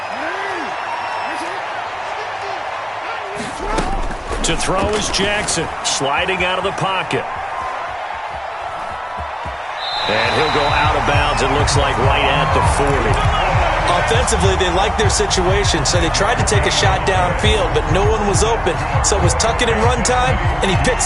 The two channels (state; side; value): identical; both; correlation 1.00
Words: To throw is Jackson, sliding out of the pocket. And he'll go out of bounds, it looks like right at the 40. Offensively, they like their situation, so they tried to take a shot downfield, but no one was open. So it was tuck it and run time, and he picks